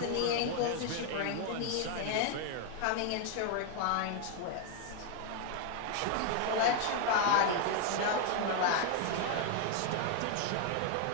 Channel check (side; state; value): both; different; correlation 0.00